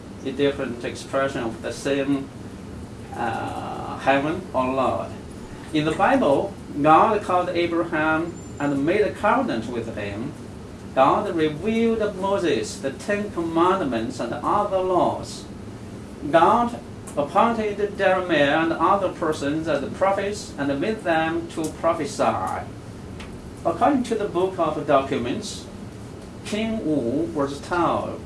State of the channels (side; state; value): both; identical; correlation 1.00